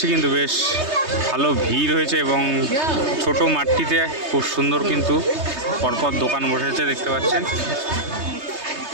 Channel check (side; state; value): left; late; 3.3 ms